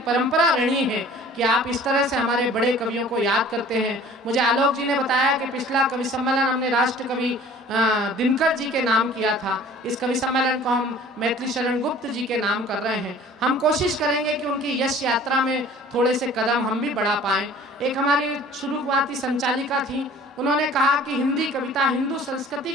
परंपरा रही है कि आप इस तरह से हमारे बड़े कवियों को याद करते हैं। मुझे आलोक जी ने बताया कि पिछला कवि सम्मेलन हमने राष्ट्र कवि दिनकर जी के नाम किया था। इस कवि सम्मेलन को हम मैथिली शरण गुप्त जी के नाम कर रहे हैं। हम कोशिश करेंगे कि उनकी यश यात्रा में थोड़े से कदम हम भी बढ़ा पाएं। एक हमारी शुरुआती संचालिका थी, उन्होंने कहा कि हिंदी कविता हिंदू संस्कृति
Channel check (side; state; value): both; normal; correlation 0.48